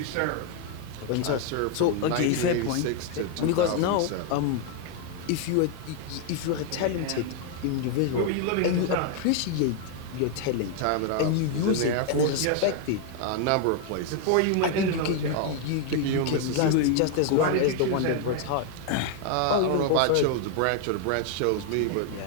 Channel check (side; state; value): both; different; correlation 0.00